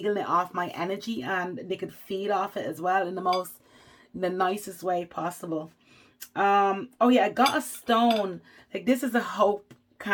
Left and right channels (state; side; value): identical; both; correlation 1.00